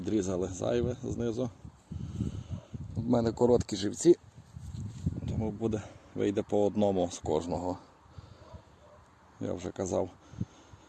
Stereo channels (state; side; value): identical; both; correlation 1.00